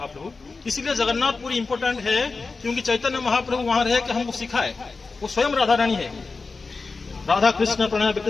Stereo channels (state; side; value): quieter; right; 4.1 dB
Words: इसीलिए जगन्नाथपुरी इंपोर्टेंट है, क्योंकि चैतन्य महाप्रभु वहां रहे कि हमको सिखाए। वो स्वयं राधा रानी है। राधा कृष्ण प्रणय